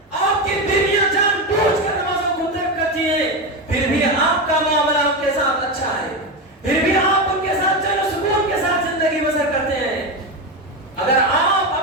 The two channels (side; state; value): both; normal; correlation 0.15